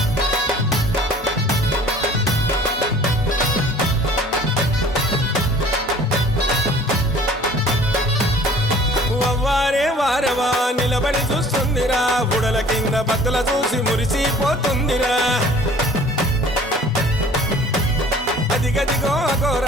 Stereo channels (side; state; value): both; normal; correlation 0.50